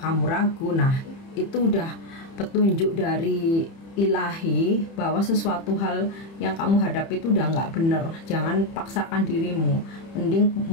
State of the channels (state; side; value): late; right; 30 ms